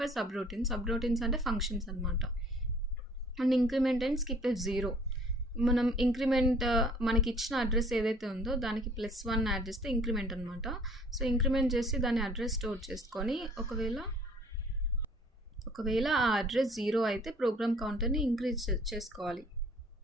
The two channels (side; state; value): both; normal; correlation 0.54